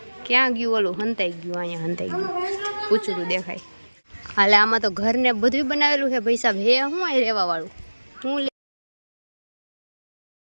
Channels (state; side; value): inverted; both; correlation -1.00